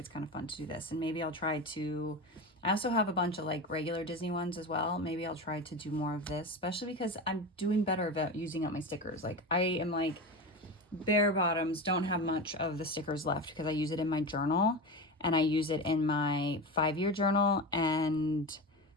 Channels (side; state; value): both; normal; correlation 0.24